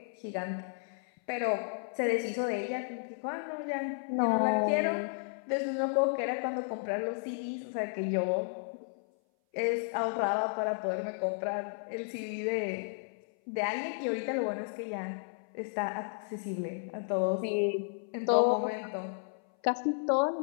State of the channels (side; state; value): right; silent; 56 dB below the other